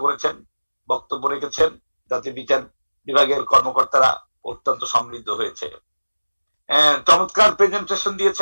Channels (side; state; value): both; inverted; correlation -1.00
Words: করেছেন, বক্তব্য রেখেছেন, যাতে বিচার বিভাগের কর্মকর্তারা অত্যন্ত সমৃদ্ধ হয়েছে। চমৎকার প্রেজেন্টেশন